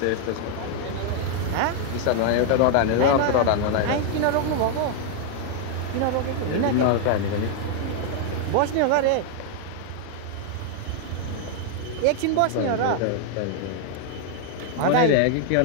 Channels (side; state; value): both; different; correlation 0.00